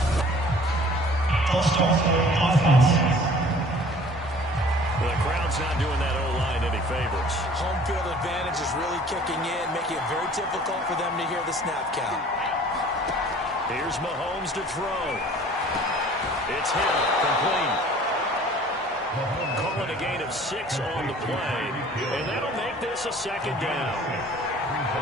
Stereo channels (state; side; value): normal; both; correlation 0.50